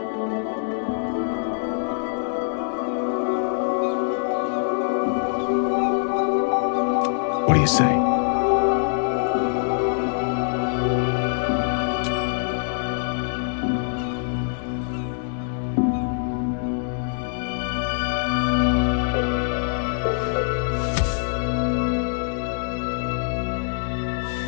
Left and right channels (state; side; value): silent; right; digital silence